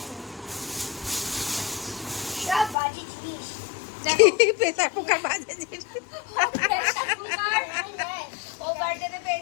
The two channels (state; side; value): drops out; right; at 2.8 s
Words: সব বাজি জিনিস। পেতা পোকার বাজে জিনিস। ও বার্থডেতে